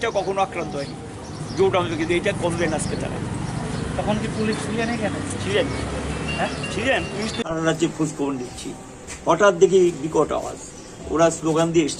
কখনো আক্রান্ত হয়নি জোট আমলে কিন্তু এটা করলেন আজকে তারা তখন কি পুলিশ ছিলেন এখানে ছিলেন হ্যাঁ ছিলেন পুলিশ সারা রাজ্যে খোঁজখবর নিচ্ছি হঠাৎ দেখি বিকট আওয়াজ ওরা স্লোগান দিয়ে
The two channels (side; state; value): both; identical; correlation 1.00